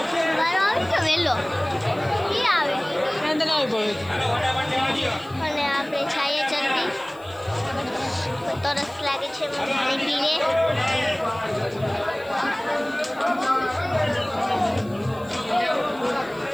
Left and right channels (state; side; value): noise; left; hiss, 27 dB below the sound